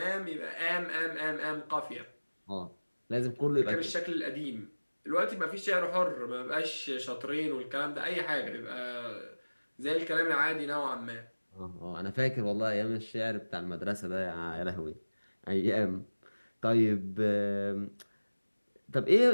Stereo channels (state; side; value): inverted; both; correlation -1.00